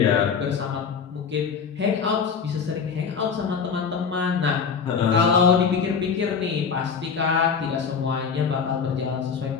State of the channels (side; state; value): right; quieter; 6.1 dB